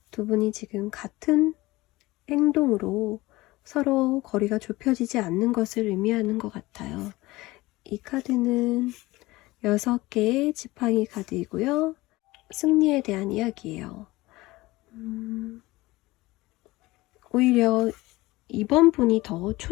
두 분이 지금 같은 행동으로 서로 거리가 좁혀지지 않는 것을 의미하는 것 같아요. 이 카드는 6개의 지팡이 카드이고요. 승리에 대한 이야기예요. 오히려 이번 분이 더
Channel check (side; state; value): right; quieter; 19.9 dB